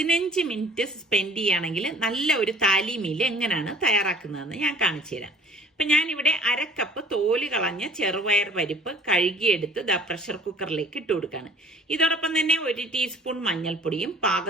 മിനിറ്റ് സ്പെൻഡ് ചെയ്യുകയാണെങ്കിൽ നല്ല ഒരു താലി മീൽ എങ്ങനെയാണ് തയ്യാറാക്കുന്നതെന്ന് ഞാൻ കാണിച്ചു തരാം. അപ്പം ഞാനിവിടെ 1/2 കപ്പ് തോല് കളഞ്ഞ ചെറുപയർ പരിപ്പ് കഴുകിയെടുത്ത് പ്രഷർ കുക്കറിലേക്ക് ഇട്ട് കൊടുക്കുകയാണ്. ഇതോടൊപ്പം തന്നെ 1 ടീസ്പൂൺ മഞ്ഞൾപ്പൊടിയും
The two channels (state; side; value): normal; both; correlation 0.49